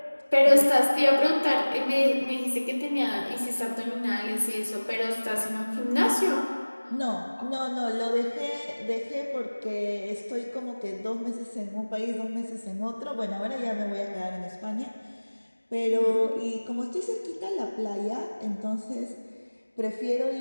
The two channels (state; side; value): inverted; both; correlation -1.00